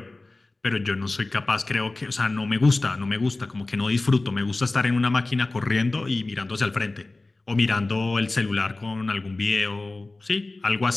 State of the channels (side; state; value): right; quieter; 3.1 dB